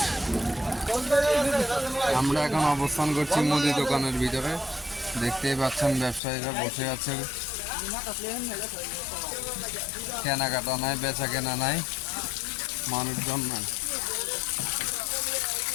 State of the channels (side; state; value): right; drops out; at 6.2 s